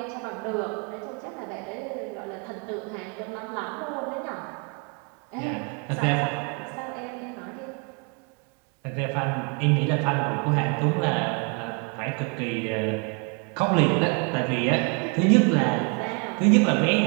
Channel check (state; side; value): quieter; left; 33.7 dB